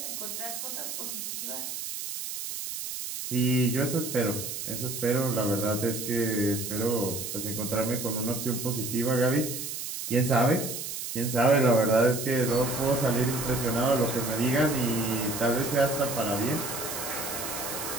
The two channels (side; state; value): right; noise; hiss, 6 dB below the sound